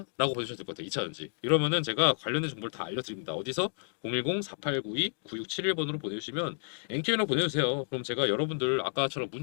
보셔도 될 것 같아요. 2차 연지. 이러면은 제가 관련된 정보를 다 알려드립니다. 어디서? 010-4892-9671번으로 보내주시면 NK랑 보내주세요. 그럼 제가 여러분들 아까처럼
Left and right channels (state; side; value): silent; right; digital silence